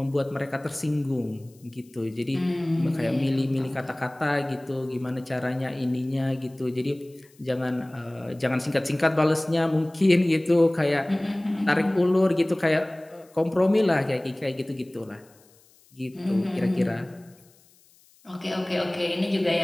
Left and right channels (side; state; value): left; noise; hiss, 30 dB below the sound